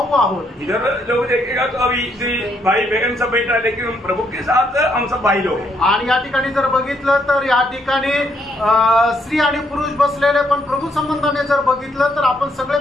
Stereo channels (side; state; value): both; normal; correlation 0.73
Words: आहोत। इधर लोग देखेगा तो अभी भाई बहन सब बैठा, लेकिन हम प्रभु के साथ हम सब भाई लोग हैं। आणि या ठिकाणी जर बघितलं तर या ठिकाणी स्त्री आणि पुरुष बसलेले, पण प्रभू संबंधाने जर बघितलं तर आपण